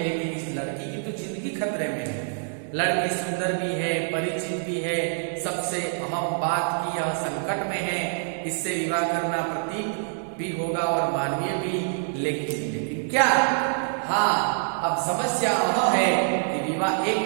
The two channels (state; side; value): silent; left; digital silence